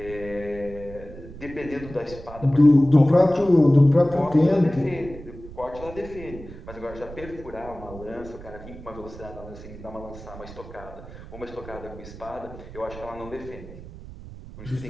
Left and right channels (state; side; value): noise; right; rumble, 15 dB below the sound